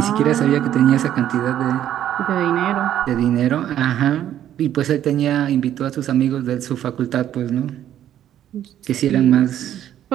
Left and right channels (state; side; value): quieter; left; 11.2 dB